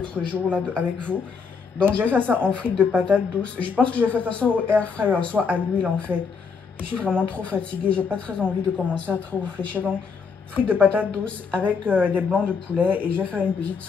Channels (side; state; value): right; quieter; 5.5 dB